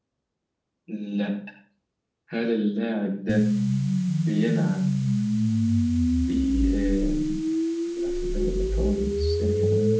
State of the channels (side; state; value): both; identical; correlation 1.00